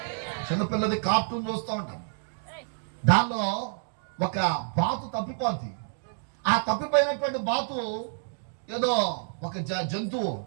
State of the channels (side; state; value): left; silent; digital silence